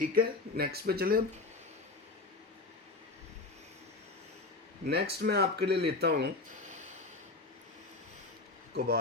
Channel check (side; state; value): right; quieter; 3.6 dB